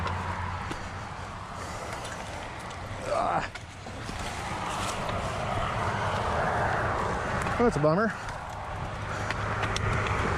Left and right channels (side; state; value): both; identical; correlation 1.00